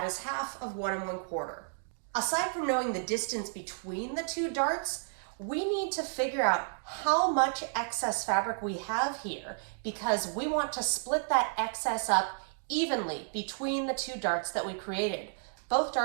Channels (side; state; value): left; silent; digital silence